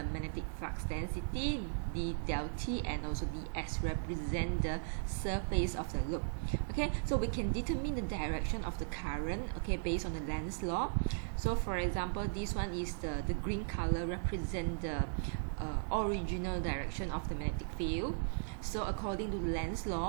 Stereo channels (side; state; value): left; silent; digital silence